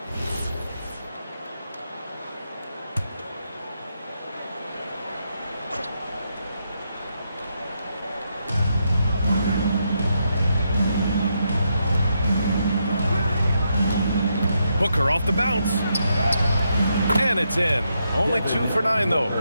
Booker off the bounce. And it's in. Only 2 for 9, though.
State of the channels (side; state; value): both; inverted; correlation -0.81